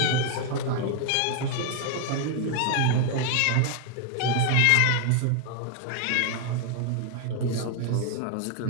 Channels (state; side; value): different; both; correlation 0.00